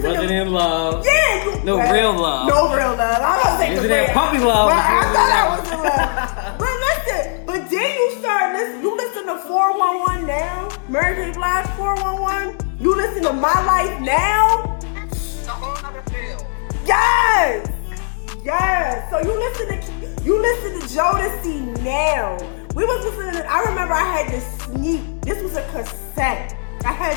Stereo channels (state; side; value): silent; right; 59 dB below the other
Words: Wasn't in love. Yeah. Real love. No real love. I don't think Isn't that puppy love? But I thought I was in love. But listen. But then you start listening. You listen to 411 now. Mary J. Blige 411. You listen to My Life Now. A whole other feel. Yes! Yes! So you listen to Jodeci now. We was listening to, I remember I had to sneak, this was a cassette. I